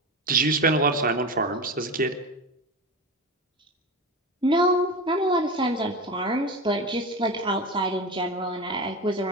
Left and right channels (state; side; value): normal; both; correlation 0.24